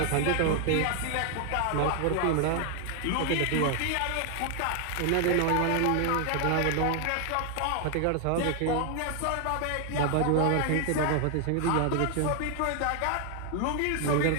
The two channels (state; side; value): different; both; correlation 0.00